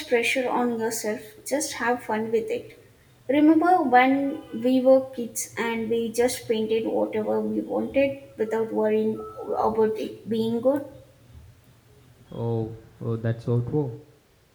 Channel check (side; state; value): both; identical; correlation 1.00